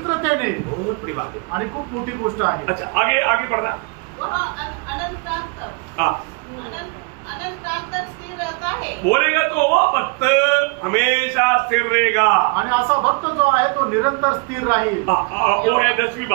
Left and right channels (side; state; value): left; quieter; 32.0 dB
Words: बहुत बड़ी बात है आणि खूप मोठी गोष्ट आहे. अच्छा, आगे आगे बढ़ना. स्थिर रहता है. बोलेगा तो वो भक्त हमेशा स्थिर रहेगा. आणि असा भक्त जो आहे तो निरंतर स्थिर राहील. वो है 10वीं